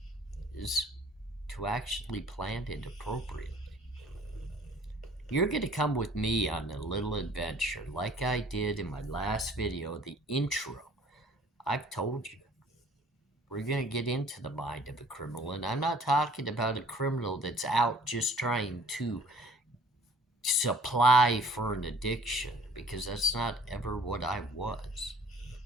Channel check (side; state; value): both; normal; correlation 0.53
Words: is to actually plan it appropriately. You're going to come with me on a little adventure like I did in my last video, the intro. I've told you. We're going to get into the mind of a criminal, and I'm not talking about a criminal that's out just trying to supply for an addiction, because that's not ever what I was.